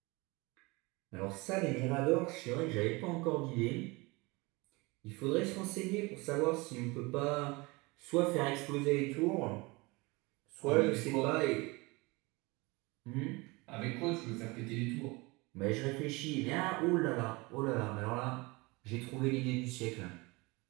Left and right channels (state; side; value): quieter; left; 24.8 dB